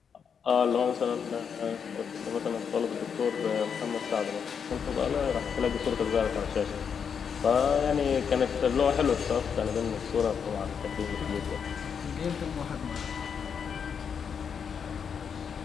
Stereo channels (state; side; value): quieter; right; 6.9 dB